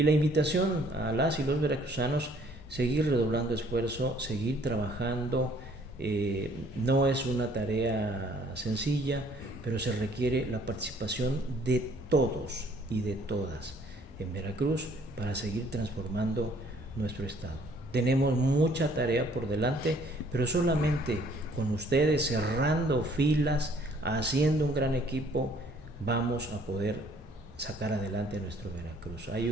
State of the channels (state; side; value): normal; both; correlation 0.60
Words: la invitación a las y los veracruzanos, seguir redoblando esfuerzo, seguir trabajando. No es una tarea sencilla, pero se requiere la participación de todos y de todas en Veracruz para seguir transformando nuestro estado. Tenemos mucha tarea por delante, pero solamente con ustedes cerrando filas, haciendo un gran equipo, vamos a poder sacar adelante a nuestro Veracruz. Hay